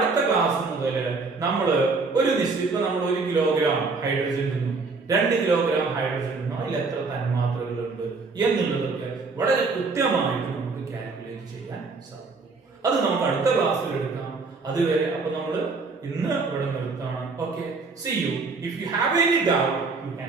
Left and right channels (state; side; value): quieter; left; 4.1 dB